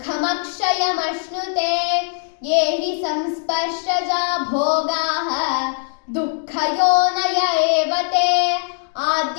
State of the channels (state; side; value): silent; right; digital silence